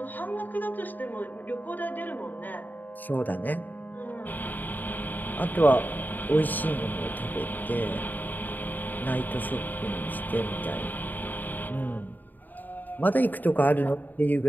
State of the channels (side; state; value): right; late; 0.087 ms